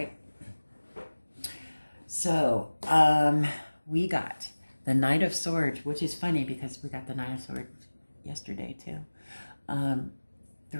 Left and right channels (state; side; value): inverted; both; correlation -1.00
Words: So we got the Knight of Swords, which is funny because we got the Knight of Swords yesterday too.